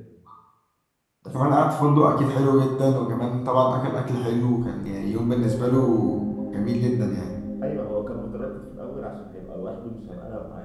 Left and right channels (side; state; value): both; identical; correlation 1.00